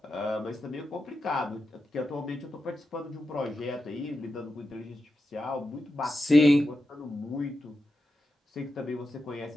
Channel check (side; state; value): both; normal; correlation 0.89